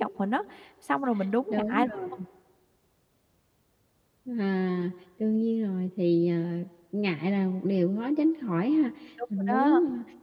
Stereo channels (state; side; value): identical; both; correlation 1.00